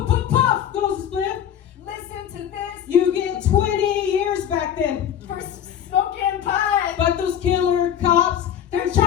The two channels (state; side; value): quieter; right; 9.7 dB